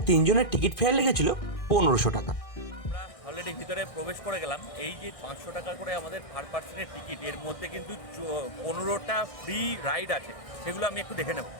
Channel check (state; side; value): late; right; 1.6 ms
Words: 3 জনের টিকিট ফেয়ার লেগেছিল 1500 টাকা। আমরা অলরেডি ভিতরে প্রবেশ করে গেলাম। এই যে 500 টাকা করে আমাদের পার পার্সনের টিকিট, এর মধ্যে কিন্তু 15টা ফ্রি রাইড আছে, সেগুলো আমি একটু দেখে নেব।